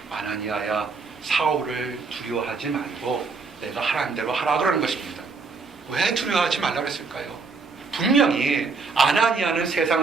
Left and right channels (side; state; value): left; quieter; 4.5 dB